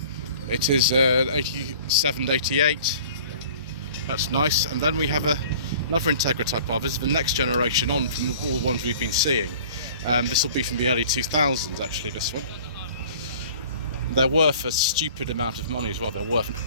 It is 87 to 88. That's nice. And then we have another Integra type R. This is the next generation on from all the ones we've been seeing. This will be from the early 2000s, actually, this one. They're worth a stupid amount of money as well. They're worth an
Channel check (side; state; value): both; inverted; correlation -0.47